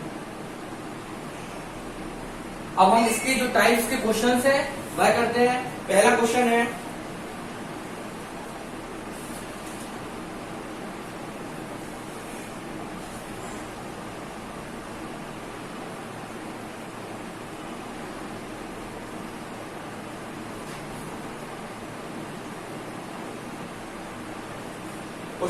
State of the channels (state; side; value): identical; both; correlation 1.00